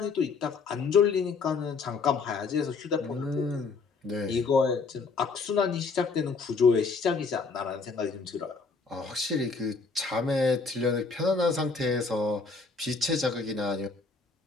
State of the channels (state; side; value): quieter; right; 4.5 dB